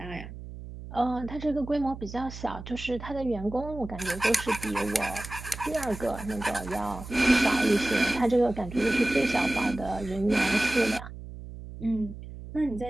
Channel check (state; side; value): noise; right; hum, 12 dB below the sound